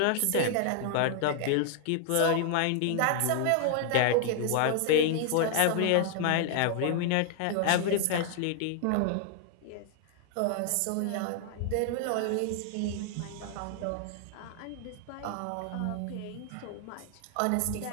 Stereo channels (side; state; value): both; different; correlation 0.00